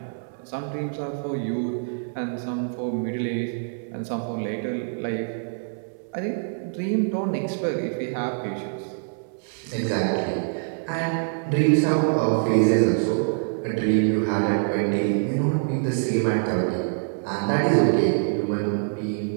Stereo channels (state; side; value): silent; left; 62 dB below the other